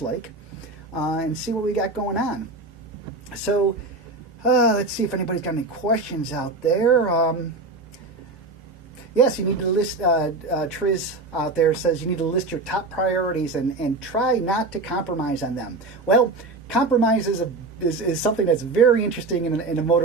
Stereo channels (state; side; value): quieter; left; 3.3 dB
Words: and see what we got going on. So, let's see if anybody's got any questions out there. Yes, you need to list, Triz out there says you need to list your top priorities and try not to compromise on them. Well, compromise is something that's very interesting in a